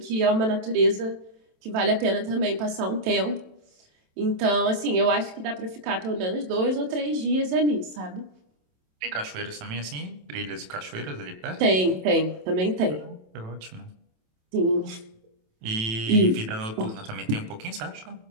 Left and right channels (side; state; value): left; late; 27 ms